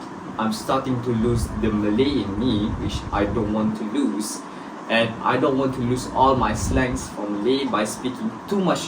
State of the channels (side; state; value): both; identical; correlation 1.00